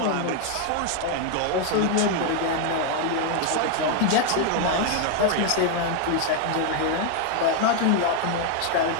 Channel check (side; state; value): both; different; correlation 0.01